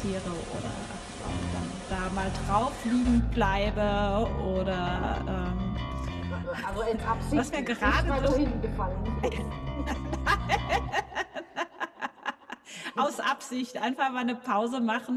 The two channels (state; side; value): identical; both; correlation 1.00